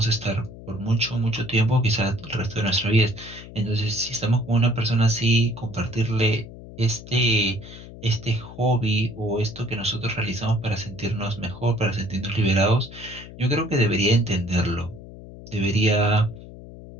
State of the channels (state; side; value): noise; left; hum, 15 dB below the sound